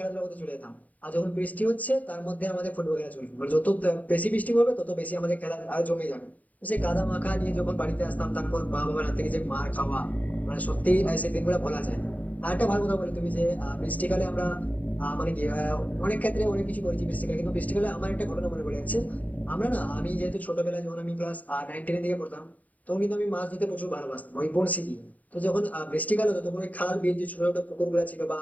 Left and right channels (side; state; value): right; late; 0.073 ms